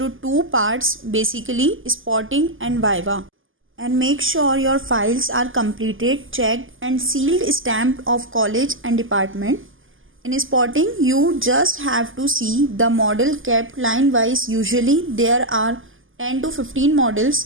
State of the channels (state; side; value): late; left; 0.58 ms